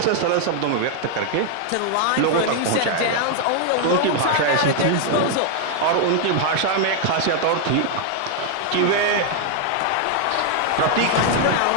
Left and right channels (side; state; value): both; different; correlation 0.00